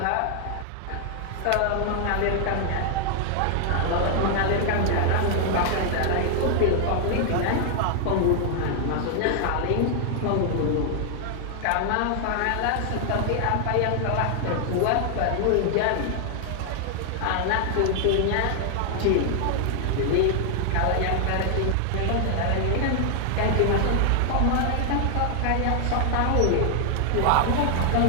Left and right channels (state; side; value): different; both; correlation 0.00